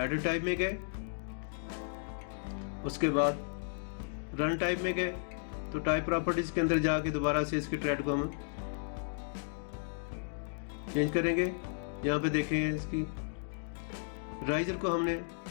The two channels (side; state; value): right; silent; digital silence